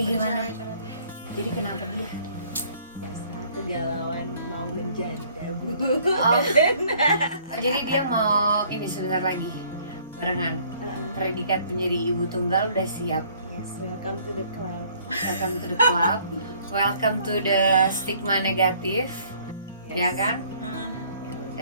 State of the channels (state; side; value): inverted; both; correlation -0.59